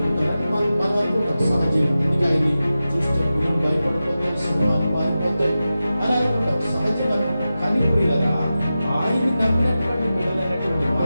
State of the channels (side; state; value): both; inverted; correlation -0.93